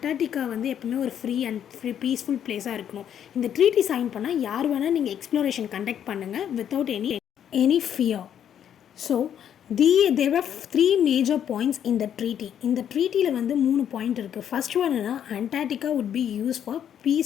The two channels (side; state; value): right; quieter; 9.4 dB